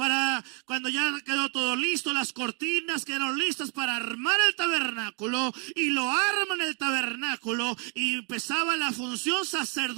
cuando ya quedó todo listo, las cortinas quedaron listas para armar el tabernáculo, y lo arman el tabernáculo y empezaba la función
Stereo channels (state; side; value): quieter; left; 36.5 dB